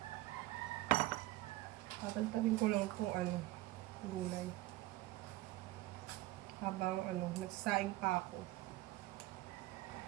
Tatantarin ko lang kung gulay. Habang nagsasaing pa ako.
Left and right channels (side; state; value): left; quieter; 17.5 dB